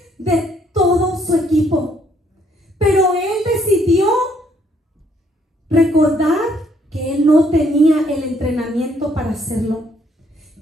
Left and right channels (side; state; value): both; normal; correlation 0.68